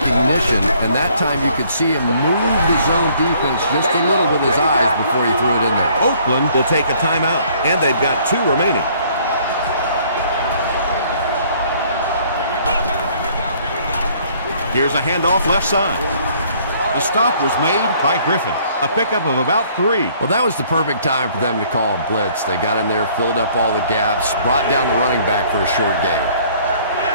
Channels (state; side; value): inverted; both; correlation -0.60